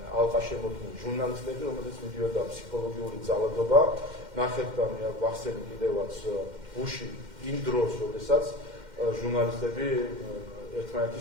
ალყა შემოქმნილი ჟურნალისტები, რომელზეც მიდიოდა ფსიქოლოგიური ძალადობა. ნახეთ და მე ვახსენე კიდევაც ბუში იმ დროს, როდესაც ჟურნალისტები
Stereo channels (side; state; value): left; late; 2.1 ms